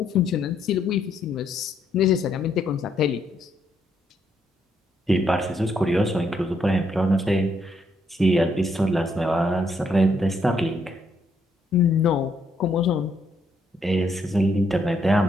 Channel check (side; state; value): both; normal; correlation 0.74